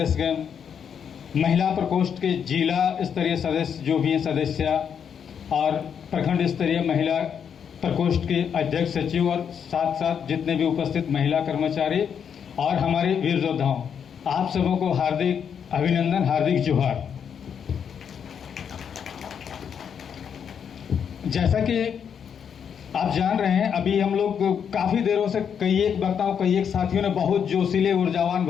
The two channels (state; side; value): quieter; right; 7.6 dB